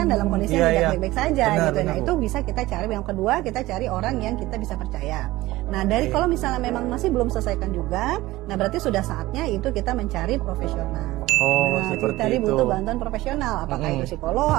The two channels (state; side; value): quieter; left; 17.9 dB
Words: dalam kondisi yang tidak baik-baik saja gitu. Nah itu bisa kita cari. Yang kedua, kita cari orang yang kita bisa percaya. Nah dari kalau misalnya memang masih belum selesaikan juga, nah berarti sudah saatnya itu kita mencari profesional. Nah kita butuh bantuan profesional. Apakah itu psikolog,